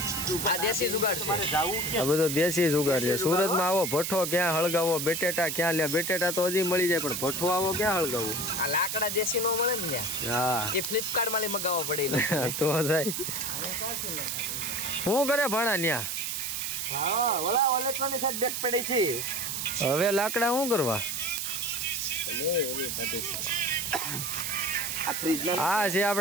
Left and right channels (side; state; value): right; noise; hiss, 3 dB below the sound